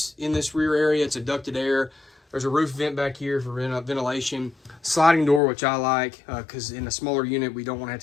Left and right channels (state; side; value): drops out; right; at 5.4 s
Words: rear area. It's a ducted air. There's a roof vent back here for ventilation. Sliding door, which I like, because in a smaller unit, we don't want to have